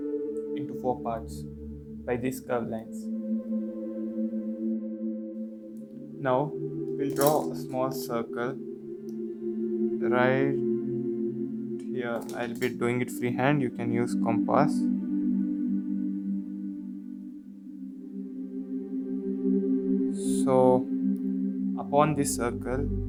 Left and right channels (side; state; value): both; identical; correlation 1.00